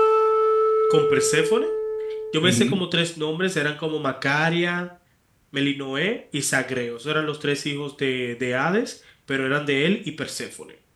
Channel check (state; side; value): identical; both; correlation 1.00